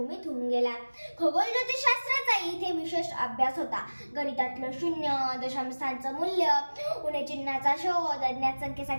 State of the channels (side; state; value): both; inverted; correlation -1.00